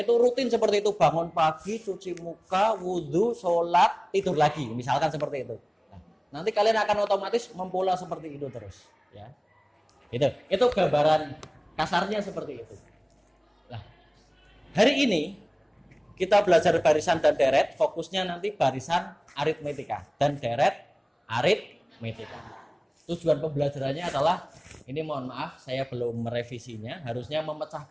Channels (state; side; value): identical; both; correlation 1.00